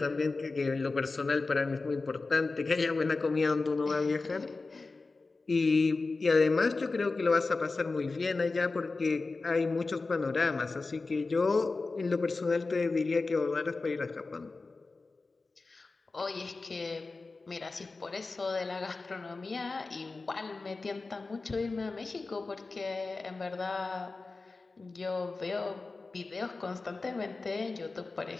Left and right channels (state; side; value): quieter; right; 3.7 dB